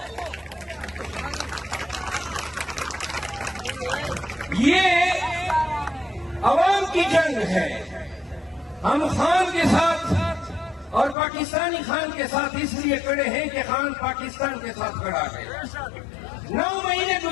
یہ عوام کی جنگ ہے. ہم خان کے ساتھ اور پاکستانی خان کے ساتھ اس لیے کھڑے ہیں کہ خان پاکستان کے ساتھ کھڑا ہے. 9 مہینے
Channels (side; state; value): right; drops out; at 11.2 s